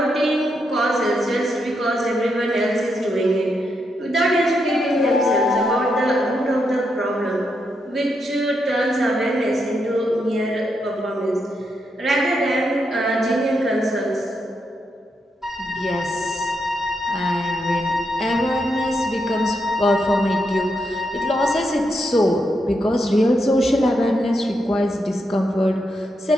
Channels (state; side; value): normal; both; correlation 0.82